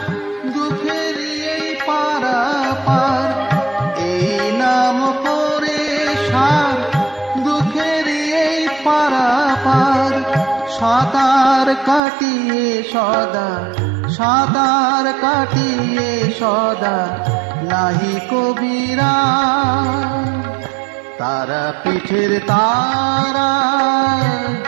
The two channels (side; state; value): left; drops out; at 12.0 s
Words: দুঃখের এই পারাপার, এই নাম করে সার দুঃখের এই পারাপার। সাঁতার কাটিয়ে সদা, সাঁতার কাটিয়ে সদা নাহি কবিরা। তারা পীঠের তারা